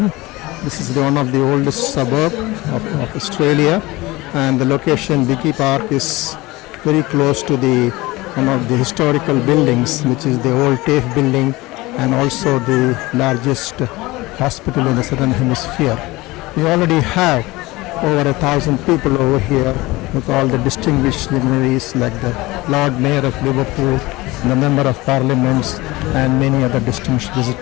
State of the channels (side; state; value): right; quieter; 20.7 dB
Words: This is one of the oldest suburb of Australia, and the location Biggie Park is very close to one of the historical buildings, which is the old TAFE building and also the largest hospital in the southern hemisphere. We already have over 1,000 people over here with all the distinguished luminaries like the Lord Mayor of Liverpool, the Member of Parliament and many other distinguished